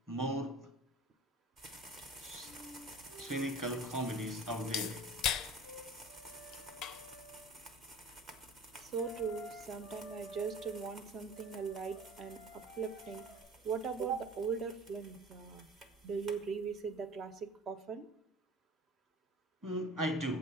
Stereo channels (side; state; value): both; normal; correlation 0.41